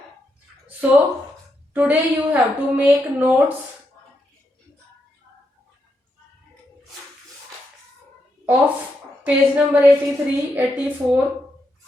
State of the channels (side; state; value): both; normal; correlation 0.82